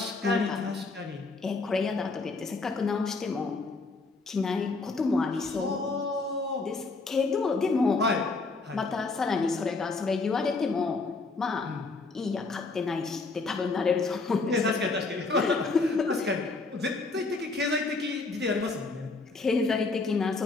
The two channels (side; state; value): right; quieter; 3.8 dB